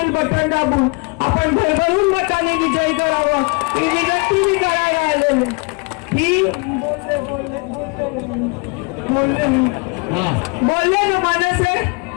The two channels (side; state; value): right; quieter; 31.4 dB